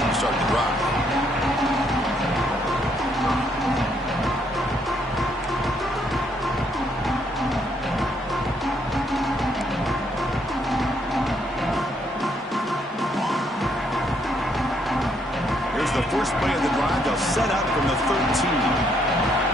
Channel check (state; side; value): normal; both; correlation 0.72